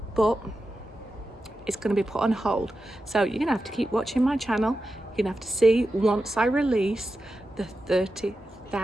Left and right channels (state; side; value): normal; both; correlation 0.91